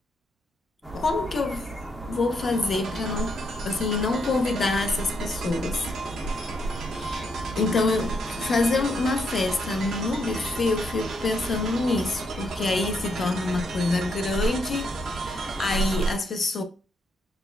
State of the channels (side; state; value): both; normal; correlation 0.77